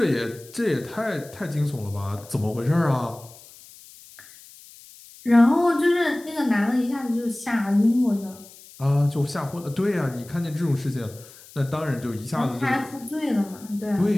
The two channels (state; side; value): noise; left; hiss, 21 dB below the sound